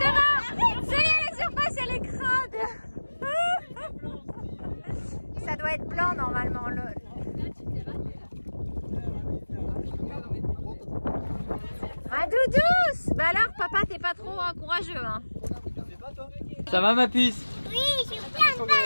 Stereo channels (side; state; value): both; inverted; correlation -1.00